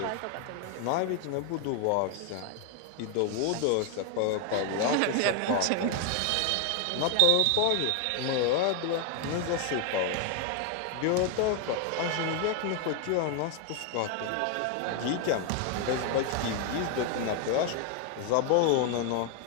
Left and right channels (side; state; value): both; different; correlation 0.01